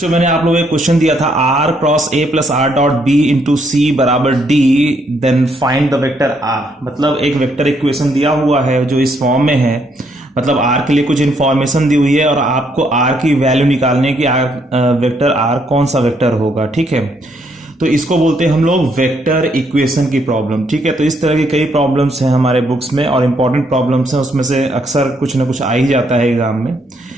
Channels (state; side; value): normal; both; correlation 0.72